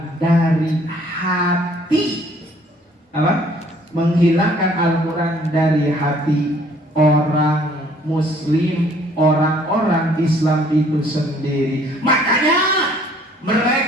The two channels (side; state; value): both; normal; correlation 0.59